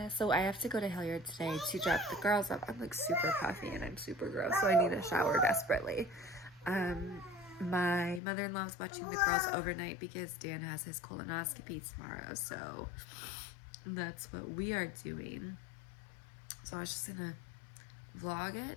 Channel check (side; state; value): right; drops out; at 8.2 s